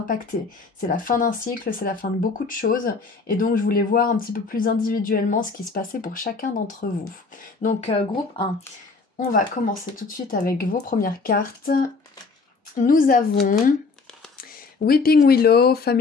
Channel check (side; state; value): right; quieter; 4.3 dB